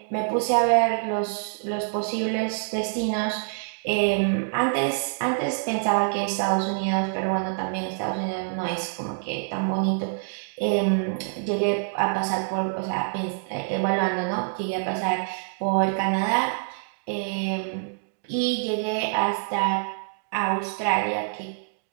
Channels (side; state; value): left; silent; digital silence